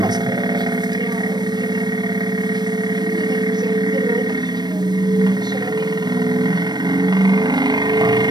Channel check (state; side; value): late; left; 0.20 ms